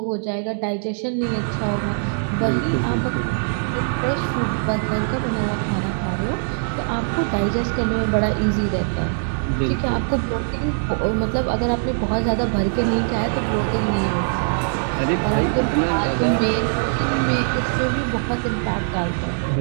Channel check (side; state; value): left; silent; digital silence